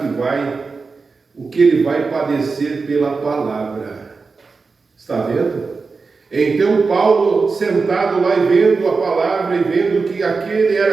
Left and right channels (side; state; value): left; quieter; 4.4 dB